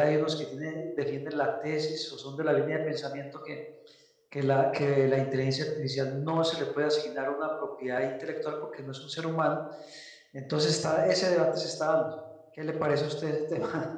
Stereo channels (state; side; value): identical; both; correlation 1.00